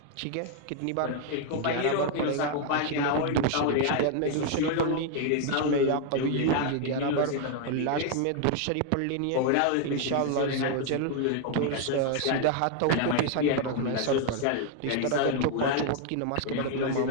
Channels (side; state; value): both; different; correlation 0.00